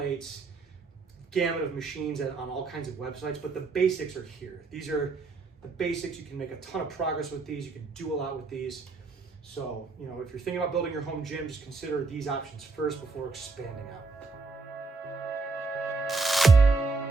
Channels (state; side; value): quieter; left; 4.0 dB